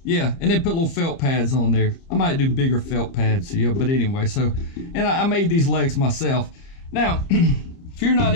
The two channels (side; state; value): right; late; 30 ms